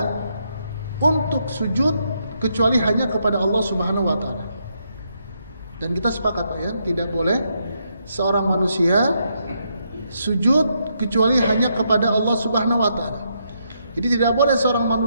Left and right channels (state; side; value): inverted; both; correlation -0.77